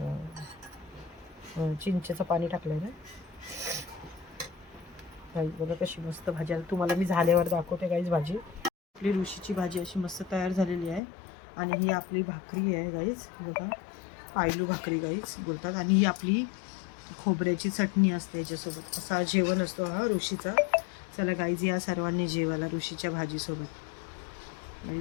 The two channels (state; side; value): drops out; right; at 11.0 s